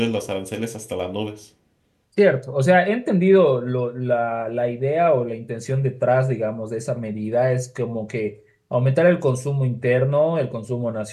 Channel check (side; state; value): both; identical; correlation 1.00